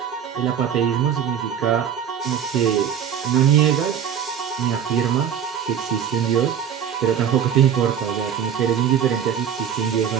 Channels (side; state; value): left; quieter; 8.7 dB